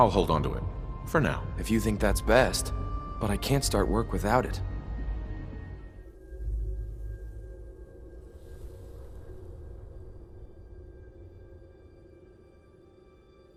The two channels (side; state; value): both; identical; correlation 1.00